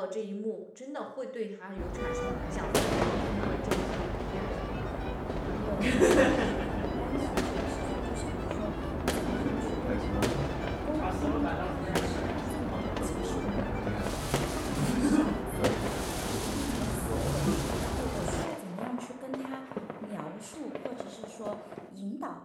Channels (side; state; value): both; identical; correlation 1.00